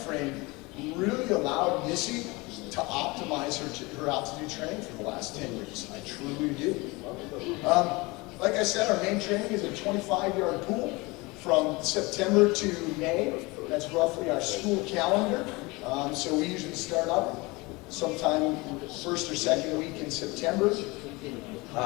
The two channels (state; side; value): quieter; right; 24.3 dB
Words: frame really allowed Missy to optimize her altitude training for the last 10 years. I truly do. Like I said, our main training is a 25-yard pool from September to May. That's roughly our school calendar. So we usually start up sometime first or second week in September.